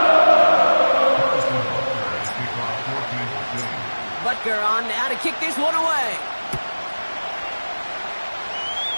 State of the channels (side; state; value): both; inverted; correlation -1.00